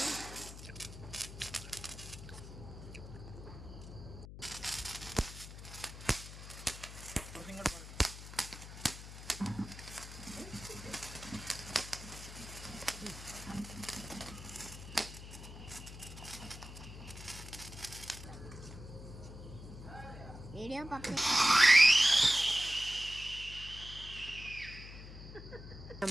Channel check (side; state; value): left; noise; hum, 12 dB below the sound